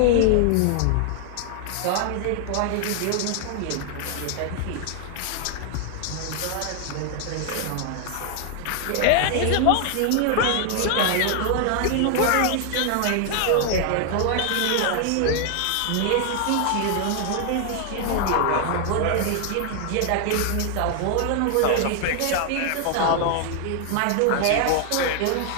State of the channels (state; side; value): different; both; correlation 0.00